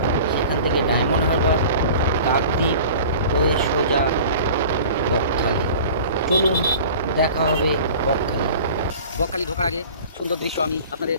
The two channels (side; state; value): both; inverted; correlation -0.41